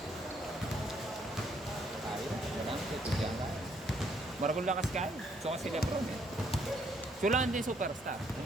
Tayo, wala nang tutugyan ka. Maragol lakas kayo. So kasi Lebron eh. Sulaan din superstar.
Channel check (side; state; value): both; normal; correlation 0.69